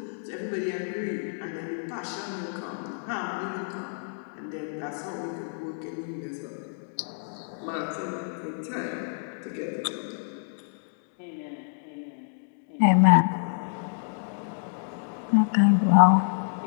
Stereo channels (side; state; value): right; silent; digital silence